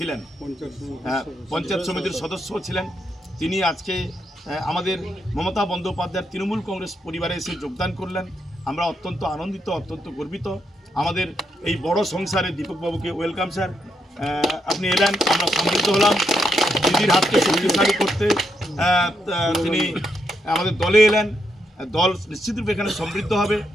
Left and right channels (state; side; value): normal; both; correlation 0.79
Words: পঞ্চায়েত সমিতির সদস্য ছিলেন, তিনি আজকে আমাদের মমতা বন্দ্যোপাধ্যায়ের তৃণমূল কংগ্রেস পরিবারে এসে যোগদান করলেন। আমরা অত্যন্ত আনন্দিত, অত্যন্ত গর্বিত। আমাদের এই বড় সংসারে দীপকবাবুকে ওয়েলকাম স্যার। আপনি এলেন, আমরা সমৃদ্ধ হলাম। দিদির হাতকে শক্তিশালী করতে তিনি আমাদের দলে এলেন। দল নিশ্চিতরূপে এখানে সমৃদ্ধ হবে।